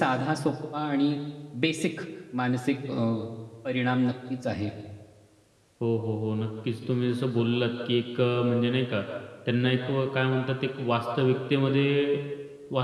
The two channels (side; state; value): both; identical; correlation 1.00